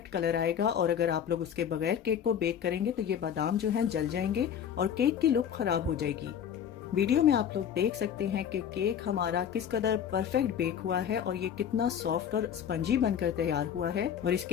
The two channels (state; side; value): quieter; right; 8.7 dB